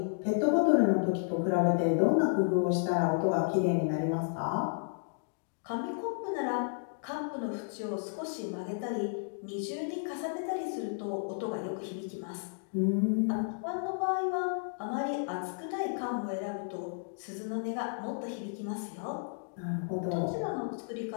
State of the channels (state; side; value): silent; right; digital silence